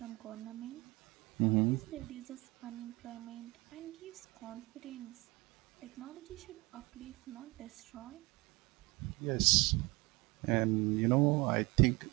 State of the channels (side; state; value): left; quieter; 23.7 dB